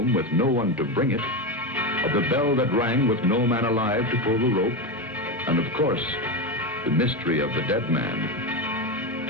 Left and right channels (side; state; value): both; normal; correlation 0.15